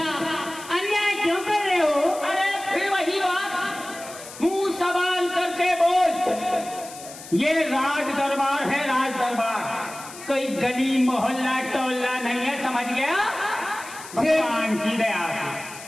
क्यों कर रहे हो? अरे फिर वही बात, मुंह सवाल करके बोल। ये राज दरबार है, राज दरबार, कोई गली मोहल्ला टोला नहीं है, समझ गया? भगवान की दया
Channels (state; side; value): noise; left; hiss, 15 dB below the sound